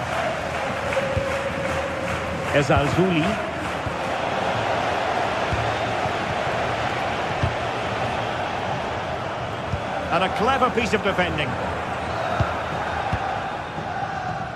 Ezalzouli. And a clever piece of defending.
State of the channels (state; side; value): identical; both; correlation 1.00